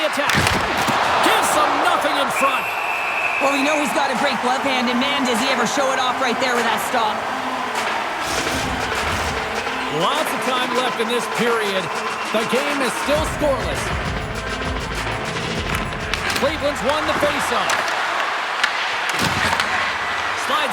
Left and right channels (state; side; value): identical; both; correlation 1.00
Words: attack. Gives them nothing in front. Well, we know he's got a great glove hand, and man, does he ever show it off right there with that stop. Lots of time left in this period. The game is still scoreless. Cleveland's won the faceoff.